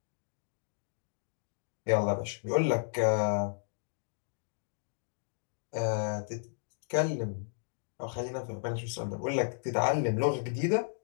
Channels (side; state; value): right; silent; digital silence